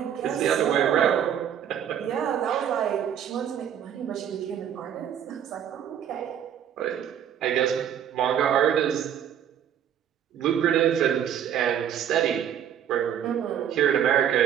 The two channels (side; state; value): left; quieter; 9.4 dB